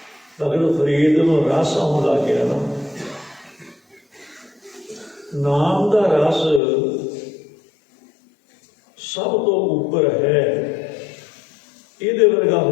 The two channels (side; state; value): right; drops out; at 6.6 s